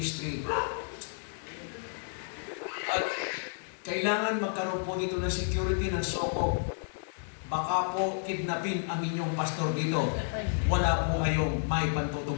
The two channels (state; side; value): silent; right; digital silence